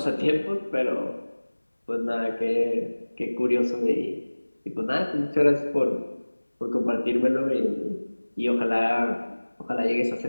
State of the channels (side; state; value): both; inverted; correlation -1.00